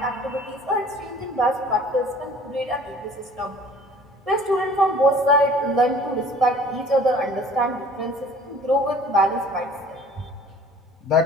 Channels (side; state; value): both; normal; correlation 0.50